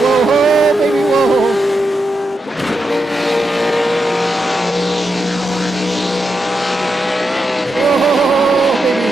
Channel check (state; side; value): normal; both; correlation 0.86